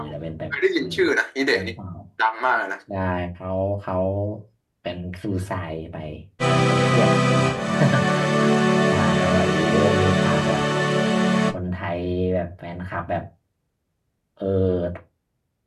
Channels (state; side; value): identical; both; correlation 1.00